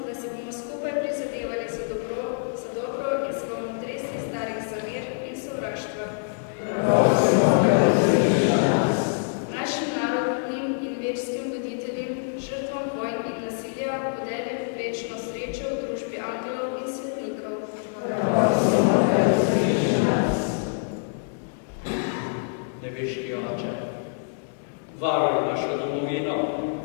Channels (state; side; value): silent; right; digital silence